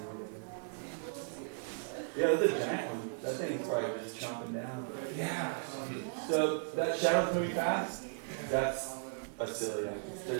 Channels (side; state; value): left; silent; digital silence